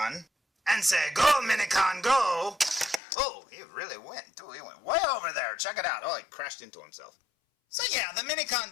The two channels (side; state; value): right; drops out; at 3.0 s